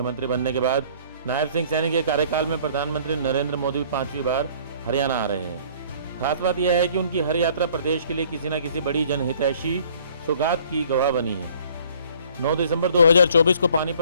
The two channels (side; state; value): both; inverted; correlation -0.56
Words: बनने के बाद नायब सिंह सैनी के कार्यकाल में प्रधानमंत्री नरेंद्र मोदी 5वीं बार हरियाणा आ रहे हैं। खास बात यह है कि उनकी हर यात्रा प्रदेश के लिए किसी न किसी बड़ी जनहितैषी सौगात की गवाह बनी है। 9 दिसंबर 2024 को